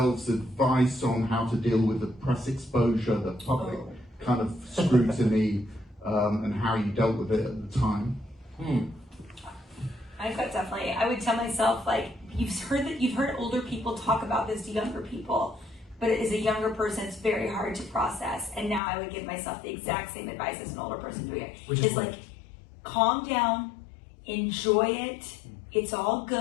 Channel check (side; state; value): right; drops out; at 18.8 s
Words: advice on how to deal with the press exposure, the public kind of scrutiny, and how you dealt with it at the time? I thought definitely. I would tell myself, like, you've heard older people talk about this to younger people, but as a younger person, it's very hard to process. And now I would give myself the exact same advice as an older person doing it. Which is what? like, calm down, enjoy it. It's all